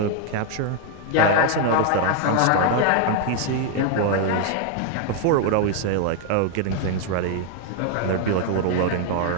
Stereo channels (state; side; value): different; both; correlation 0.00